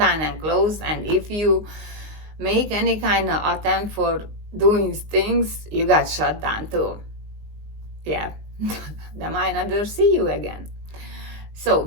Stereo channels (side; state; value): left; late; 19 ms